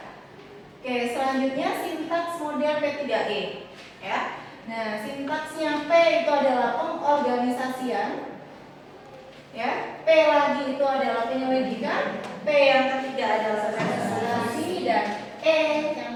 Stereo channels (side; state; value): both; identical; correlation 1.00